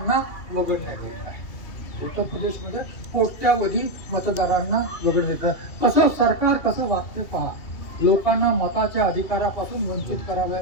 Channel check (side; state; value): right; late; 2.8 ms